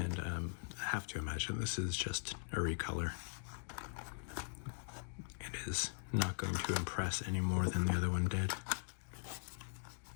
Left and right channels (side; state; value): right; silent; digital silence